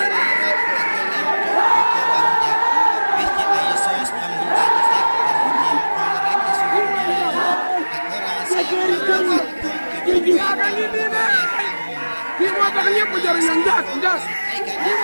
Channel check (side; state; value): both; inverted; correlation -1.00